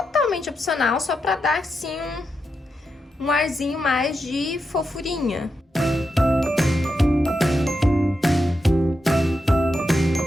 opcional, só pra dar, assim, um arzinho mais de fofurinha.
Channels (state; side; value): normal; both; correlation 0.86